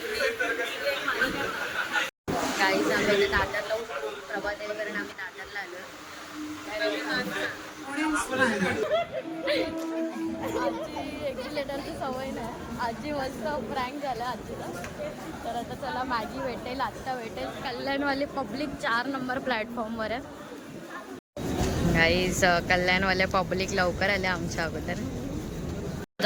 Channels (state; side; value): identical; both; correlation 1.00